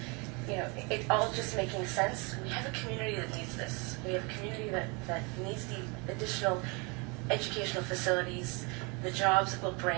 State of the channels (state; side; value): quieter; left; 30.1 dB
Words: it all just making sense, we have a community that needs this. We have a community that needs the additional educational facilities, the jobs it will